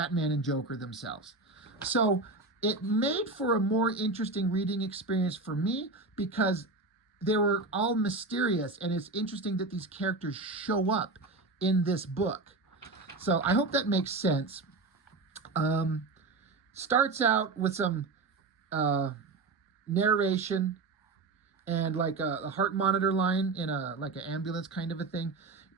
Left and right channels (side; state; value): left; quieter; 3.6 dB